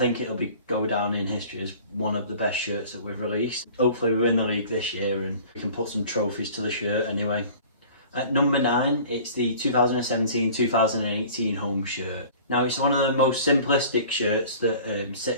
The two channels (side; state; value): both; inverted; correlation -0.46